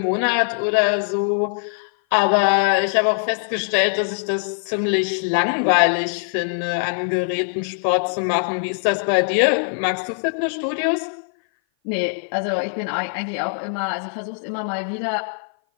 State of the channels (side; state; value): right; silent; 57 dB below the other